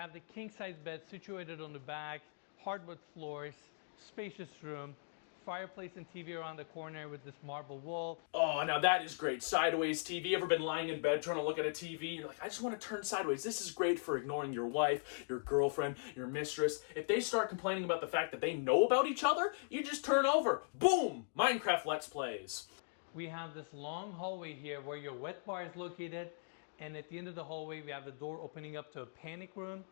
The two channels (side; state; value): right; silent; digital silence